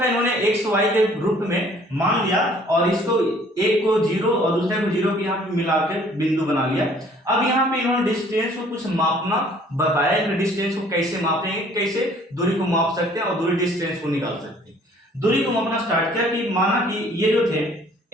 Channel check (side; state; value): both; normal; correlation 0.56